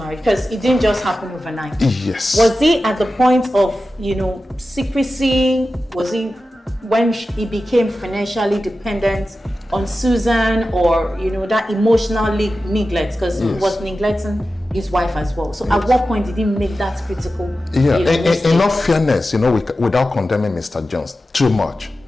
Because it didn't just happen overnight. Yes. Was he at the point of, secrecy? Was he when he became financially dependent on Susan, or that emotional neglect? Because he was neglecting his wife as well. So at what point did he make that critical? Yeah, mistake? in all fairness, without condemning Mr. Jones too much,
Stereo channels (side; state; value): both; normal; correlation 0.93